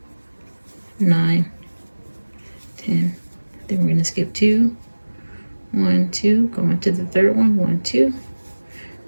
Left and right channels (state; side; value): inverted; both; correlation -1.00